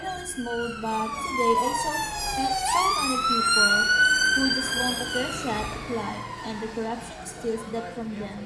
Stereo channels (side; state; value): both; identical; correlation 1.00